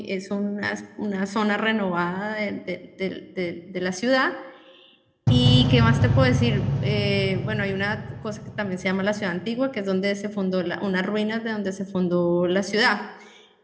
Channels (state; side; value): identical; both; correlation 1.00